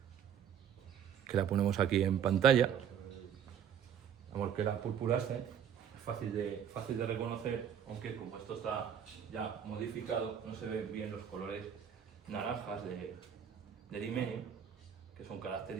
que la ponemos aquí en pantalla. Vamos, que la purpurascens es fácil de reconocer, aunque como esto está ya modificado, no se ven bien los colores naranjas del himenio, que son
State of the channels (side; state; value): left; quieter; 8.5 dB